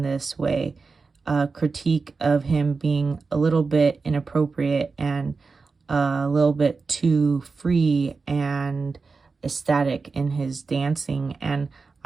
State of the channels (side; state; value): left; quieter; 4.4 dB